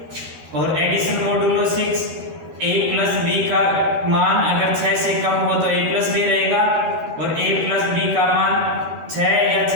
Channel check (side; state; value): left; late; 12 ms